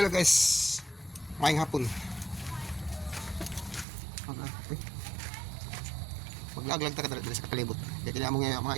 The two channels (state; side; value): drops out; left; at 3.9 s